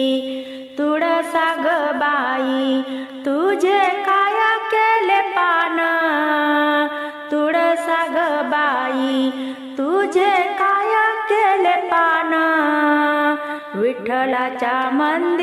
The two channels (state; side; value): identical; both; correlation 1.00